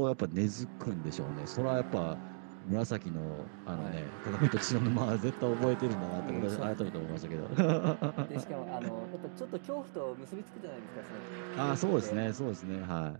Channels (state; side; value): silent; left; digital silence